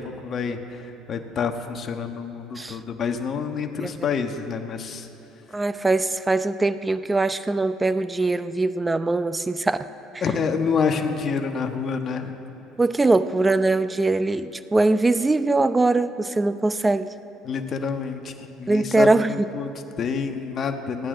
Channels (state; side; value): normal; both; correlation 0.86